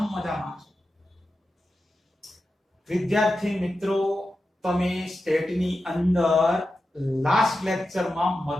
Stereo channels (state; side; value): normal; both; correlation 0.91